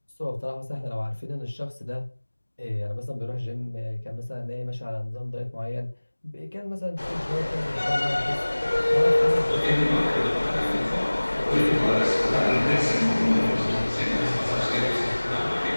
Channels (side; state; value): both; inverted; correlation -1.00